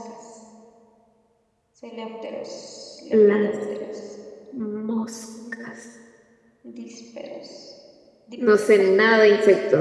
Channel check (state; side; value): identical; both; correlation 1.00